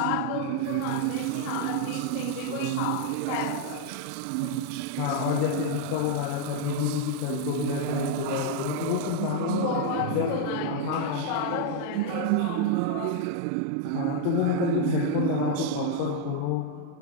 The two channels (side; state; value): both; different; correlation 0.00